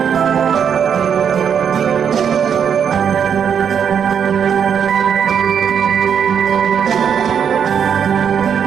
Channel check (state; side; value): quieter; left; 7.7 dB